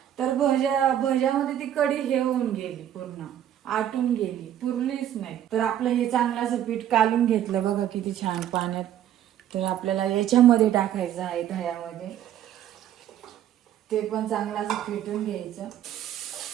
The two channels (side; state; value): left; quieter; 11.1 dB